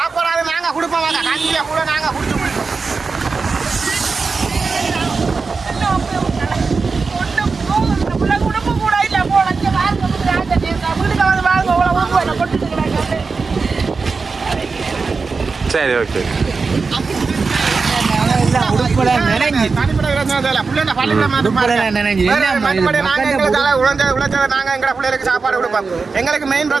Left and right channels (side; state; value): left; quieter; 4.5 dB